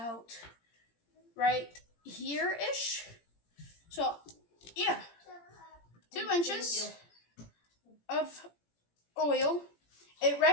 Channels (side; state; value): right; late; 17 ms